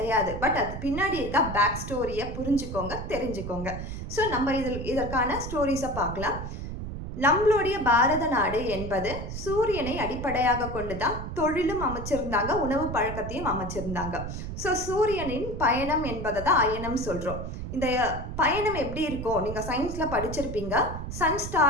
பட் அது பின்னாடி இருக்க பேக் ஸ்டோரியை புரிஞ்சுக்கோங்க, தெரிஞ்சுக்கோங்க. ஸோ நம்ம இதற்கான ஸ்டோரிஸை பார்க்கலாம். நம்மளுடைய பாரத நாடு என்பது சூரியனை அடிப்படையாக கொண்டு தான் தொழிலும் அமைச்சிருந்தாங்க, உணவு பழக்கத்தையும் அமைச்சிருந்தாங்க. ஸோ சூரியனின் பயணம் என்பதை தான் அயனம் சொல்கிறோம். இந்த பயணம் எப்படி இருக்கும், நீங்கள் சயின்ஸில் படிச்சிருப்பீங்க. சன்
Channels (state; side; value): noise; right; rumble, 7 dB below the sound